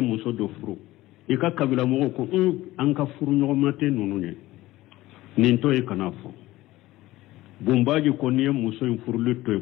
do furu ika kabila mogo ko an ka furu nyogomate nunu nye ninto e kana fo bumbaji ko niye muso in furu lito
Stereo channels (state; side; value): quieter; right; 17.3 dB